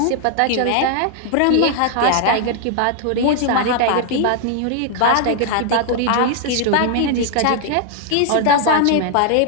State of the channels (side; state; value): both; different; correlation 0.00